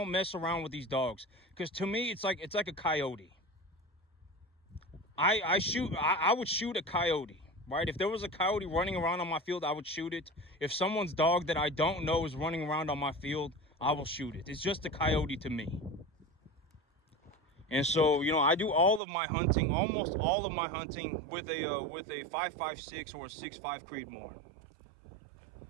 mess around with these dogs, because to me it's like a coyote. I would shoot a coyote, right? If there was a coyote running around on my field, I would shoot it. If someone's dog that I don't know is running around on my field, I will shoot it. It's just a coyote to me. And so, I do all of my hunting, almost all of my hunting with a 5.56 or a 6.5 Creedmoore.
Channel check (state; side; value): drops out; left; at 19.0 s